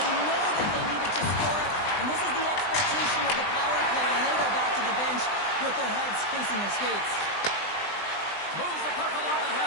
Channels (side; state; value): right; late; 20 ms